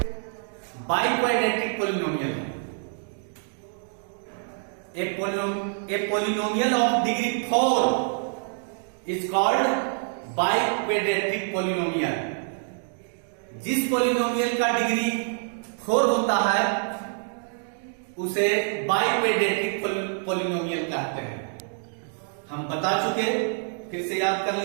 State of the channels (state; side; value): silent; left; 61 dB below the other